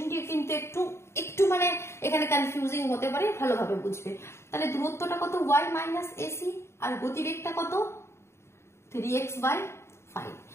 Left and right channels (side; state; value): right; late; 0.13 ms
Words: কিন্তু একটু মানে এখানে কনফিউজিং হতে পারে, ভালোভাবে বুঝবে। তাহলে দূরত্বটা কত y মাইনাস এসি আর গতিবেগটা কত 3x/5।